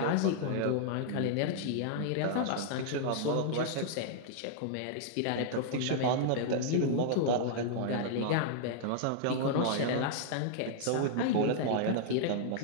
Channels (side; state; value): both; different; correlation -0.01